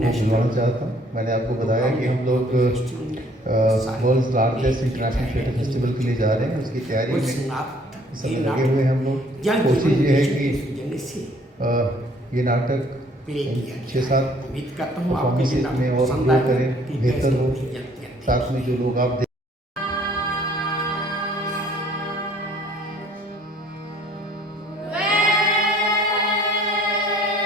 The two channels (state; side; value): normal; both; correlation 0.59